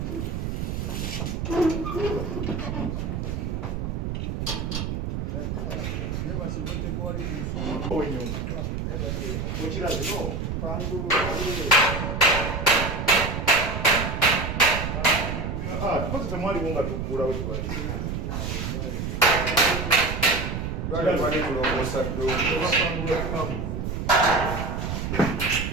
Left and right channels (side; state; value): right; noise; rumble, 3 dB below the sound